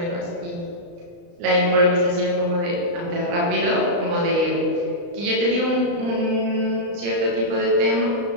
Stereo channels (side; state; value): left; late; 35 ms